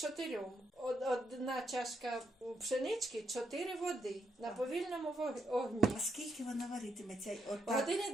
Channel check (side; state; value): both; normal; correlation 0.80